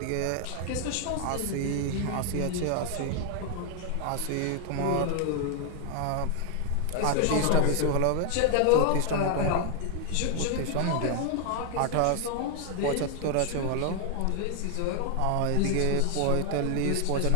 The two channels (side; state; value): both; different; correlation 0.00